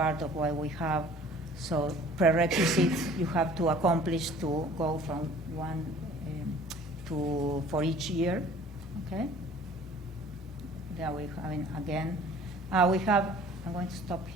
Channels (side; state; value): both; normal; correlation 0.50